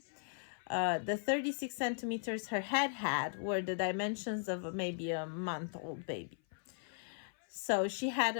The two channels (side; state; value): right; silent; 53 dB below the other